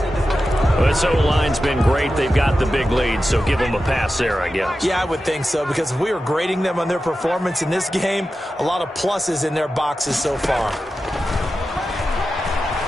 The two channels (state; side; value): normal; both; correlation 0.92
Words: this O-line's been great. They've got the big lead, so give them a pass there, I guess. Yeah, I would think so, because if we were grading them on their performance in this game, a lot of pluses in their boxes so far.